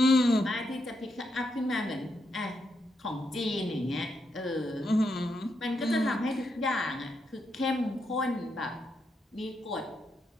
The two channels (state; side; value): normal; both; correlation 0.81